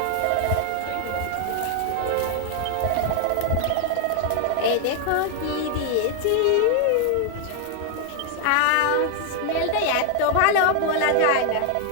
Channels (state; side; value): different; both; correlation 0.00